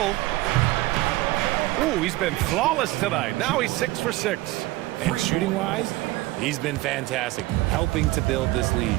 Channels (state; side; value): quieter; left; 18.9 dB